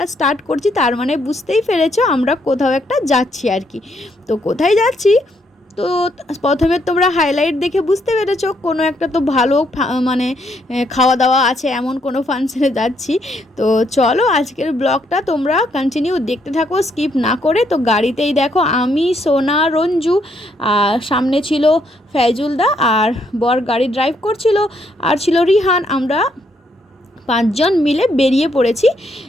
স্টার্ট করছি, তার মানে বুঝতেই পেরেছো আমরা কোথাও একটা যাচ্ছি আর কি। তো কোথায় যাচ্ছি তো প্রথমে তোমরা হাইলাইট দেখে বুঝতে পেরেছো, কোনো একটা তো ভালো মানে খাওয়া দাওয়া আছে এমন কোনো ফাংশনে যাচ্ছি। তো চলো আজকের ব্লগটা তোমরা কন্টিনিউ দেখতে থাকো, স্কিপ না করে। তো গাড়িতেই দেখো আমি, সোনা, রঞ্জু, আর সামনে ছিল ফয়জুলদা, আর বর গাড়ি ড্রাইভ করছিল, আর ছিল রিহান। আমরা 5 জন মিলে বেরিয়ে পড়েছি।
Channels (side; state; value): both; normal; correlation 0.73